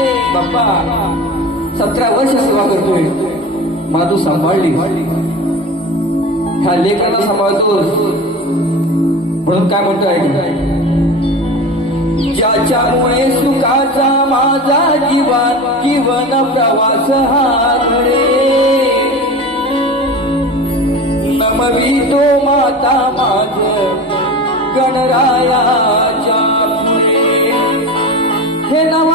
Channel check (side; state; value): both; normal; correlation 0.31